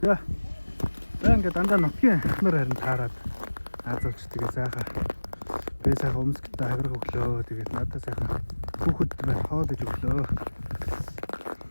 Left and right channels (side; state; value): both; inverted; correlation -1.00